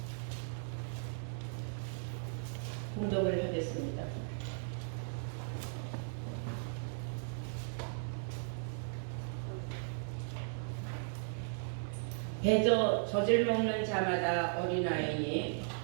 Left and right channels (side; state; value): left; silent; 53 dB below the other